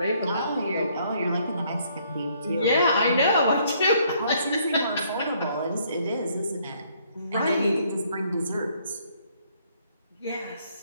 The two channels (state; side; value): inverted; both; correlation -0.66